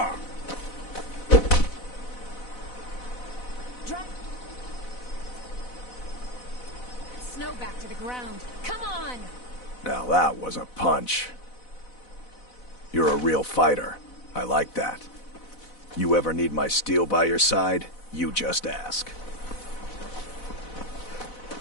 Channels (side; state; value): right; late; 4.0 ms